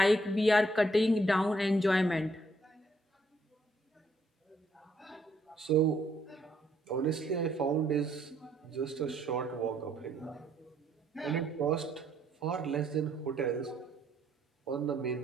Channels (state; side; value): normal; both; correlation 0.70